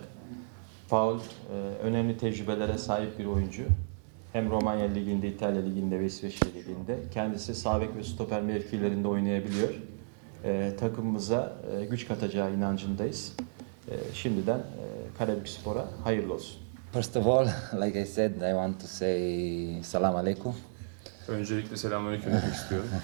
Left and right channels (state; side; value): silent; left; digital silence